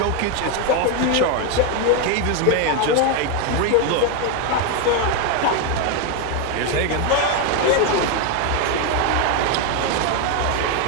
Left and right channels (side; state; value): both; different; correlation 0.02